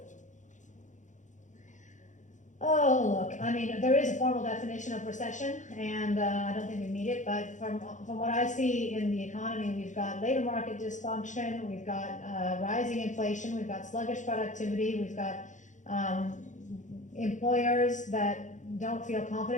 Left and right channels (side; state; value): right; late; 0.36 ms